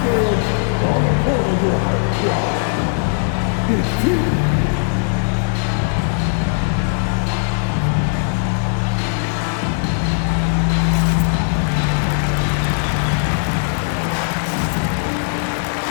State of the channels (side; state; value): right; silent; digital silence